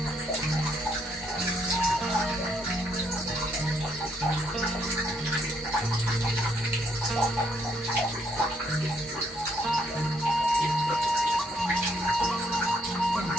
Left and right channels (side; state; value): both; normal; correlation 0.72